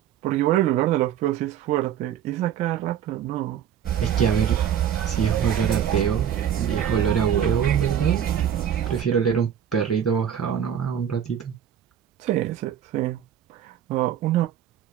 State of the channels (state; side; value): quieter; left; 9.3 dB